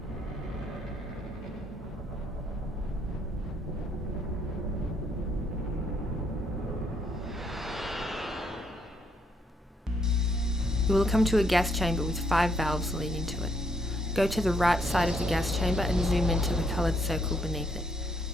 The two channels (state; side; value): normal; both; correlation 0.72